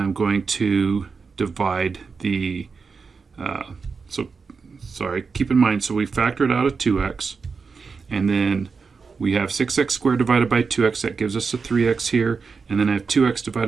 I'm going to divide the, keep in mind, so we factored out a 2x, and then we have 6x squared divided by 2x, that gives us a 3x here, and then I have 2x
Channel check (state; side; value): quieter; left; 5.0 dB